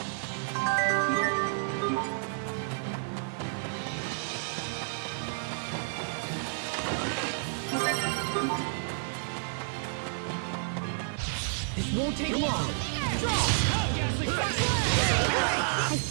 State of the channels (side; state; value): left; silent; digital silence